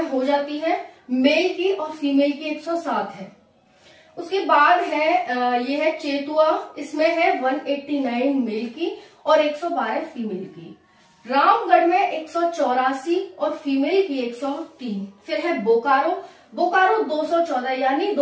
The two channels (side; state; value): both; identical; correlation 1.00